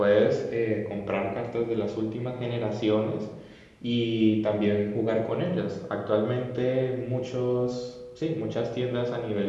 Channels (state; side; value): identical; both; correlation 1.00